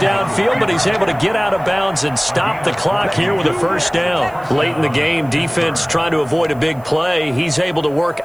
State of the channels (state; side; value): noise; right; hiss, 28 dB below the sound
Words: but he's able to get out of bounds and stop the clock here with a first down. Late in the game, defense trying to avoid a big play. He's able to work